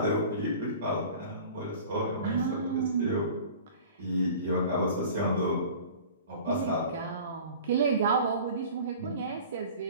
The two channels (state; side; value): inverted; both; correlation -0.42